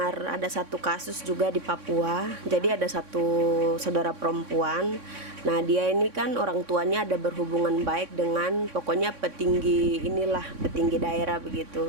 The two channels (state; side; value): late; left; 3.6 ms